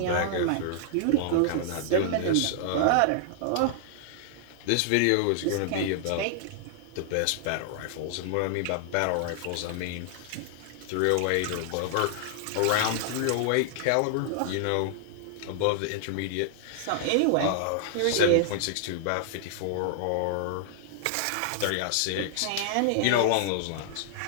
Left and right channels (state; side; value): different; both; correlation 0.00